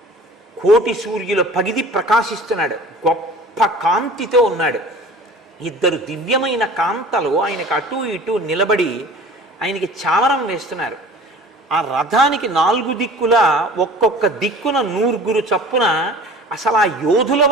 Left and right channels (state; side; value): normal; both; correlation 0.43